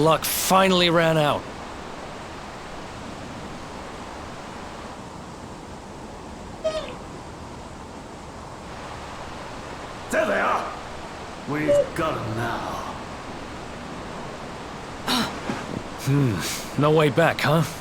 finally ran out. There they are. We've got them now. No way back, huh?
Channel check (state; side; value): identical; both; correlation 1.00